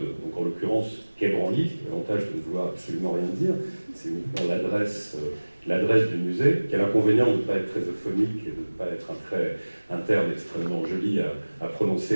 donc en l'occurrence Quai Branly, l'avantage de ne vouloir absolument rien dire, c'est uniquement l'adresse du musée, qui a l'inconvénient de ne pas être très euphonique et de ne pas être un terme extrêmement joli à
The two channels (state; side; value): inverted; both; correlation -1.00